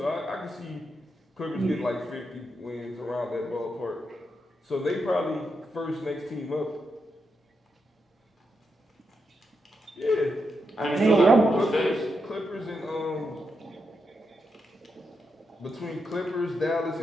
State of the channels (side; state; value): both; normal; correlation 0.84